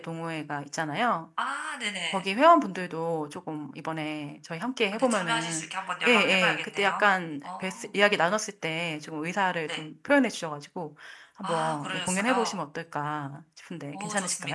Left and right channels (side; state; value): both; identical; correlation 1.00